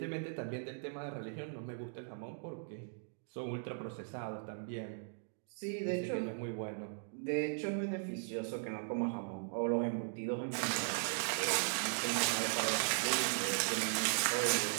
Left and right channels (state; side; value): silent; left; digital silence